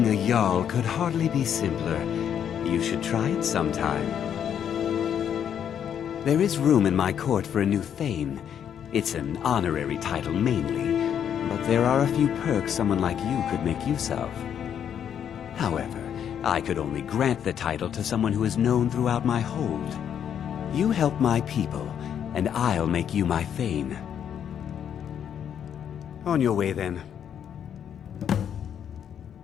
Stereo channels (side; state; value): right; quieter; 8.8 dB